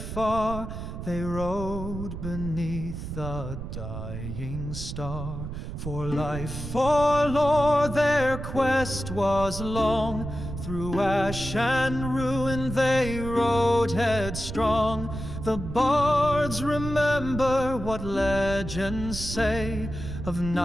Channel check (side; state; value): right; noise; rumble, 7 dB below the sound